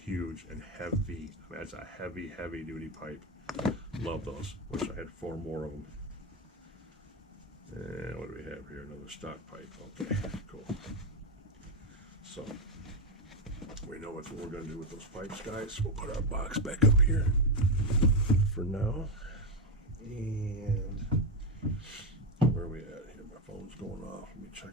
and heavy. I mean, that's a heavy, heavy duty pipe. Love those. Wish I had 4 more of them. And what do we have here? Another stock pipe. Okay, cool. So we know what we're going to do with those pipes, guys. We'll put our box back up here for now. And where are we at here? My phone's going off. Let me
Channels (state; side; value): normal; both; correlation 0.09